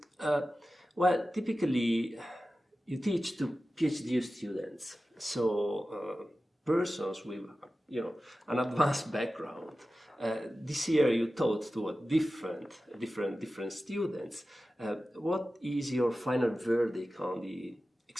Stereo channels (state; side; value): normal; both; correlation 0.95